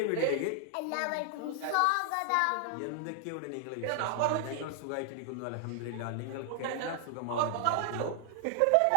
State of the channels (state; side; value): different; both; correlation 0.00